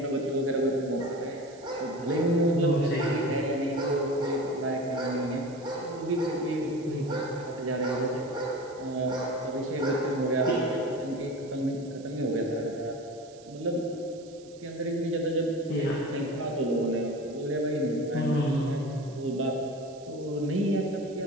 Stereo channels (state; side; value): noise; right; hiss, 24 dB below the sound